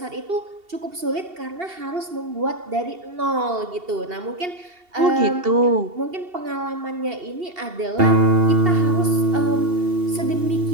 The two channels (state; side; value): late; left; 2.7 ms